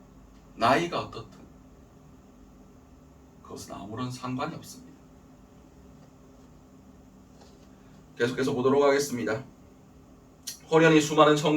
나이가 어떻든 그것은 아무런 상관이 없습니다. 계속해서 보도록 하겠습니다. 호련히 수많은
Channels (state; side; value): identical; both; correlation 1.00